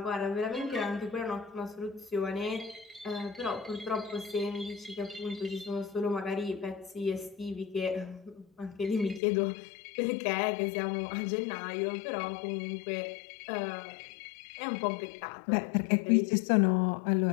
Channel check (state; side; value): drops out; right; at 9.2 s